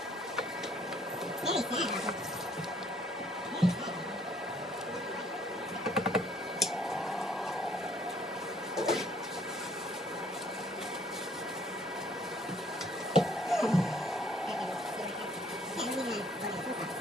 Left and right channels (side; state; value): both; normal; correlation 0.62